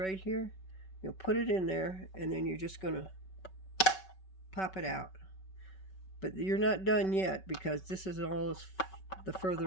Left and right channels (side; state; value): right; late; 5.3 ms